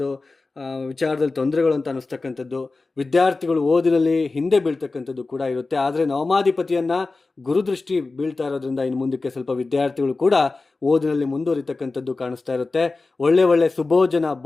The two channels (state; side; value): quieter; right; 3.6 dB